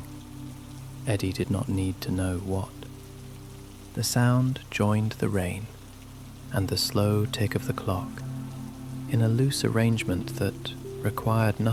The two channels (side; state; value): both; identical; correlation 1.00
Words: Eddy did not need to know what. The sound joined the rain and the slow tick of the clock in a loose arrangement that required